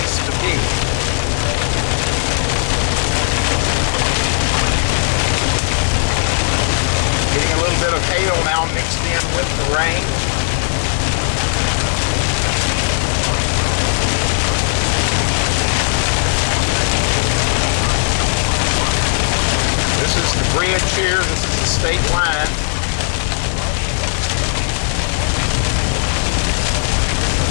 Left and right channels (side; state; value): right; silent; digital silence